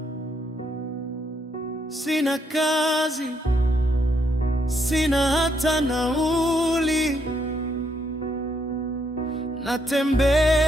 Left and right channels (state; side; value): normal; both; correlation 0.75